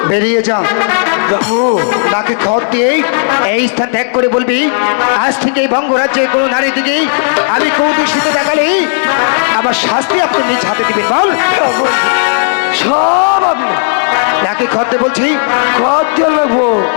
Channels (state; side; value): silent; right; digital silence